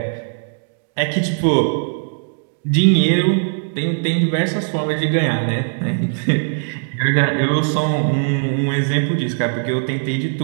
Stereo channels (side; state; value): left; silent; 66 dB below the other